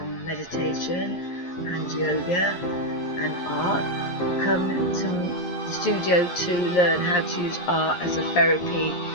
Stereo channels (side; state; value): right; late; 11 ms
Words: meditation and yoga and art. Come to the studio to learn how to use art as a therapy